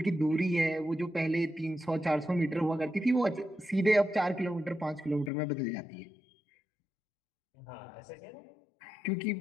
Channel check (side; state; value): right; drops out; at 5.3 s